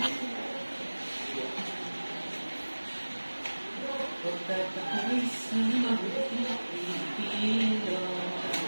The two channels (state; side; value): inverted; both; correlation -1.00